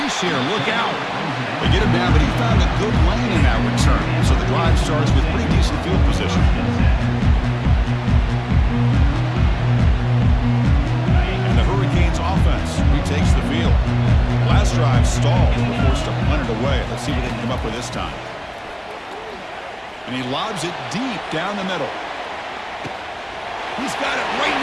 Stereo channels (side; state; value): both; identical; correlation 1.00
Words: here. Look out. They get him down, but he found a good lane in that return. So the drive starts with pretty decent field position. And the Hurricanes offense retakes the field. Last drive stalled. They were forced to punt it away. Let's see what they can come up with this time. And he lobs it deep down the middle. He's got it right